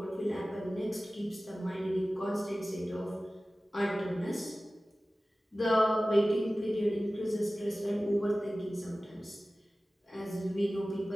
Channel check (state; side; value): normal; both; correlation 0.97